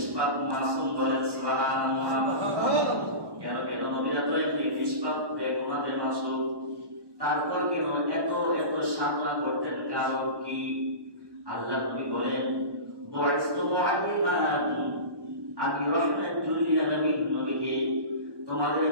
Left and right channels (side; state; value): left; late; 1.1 ms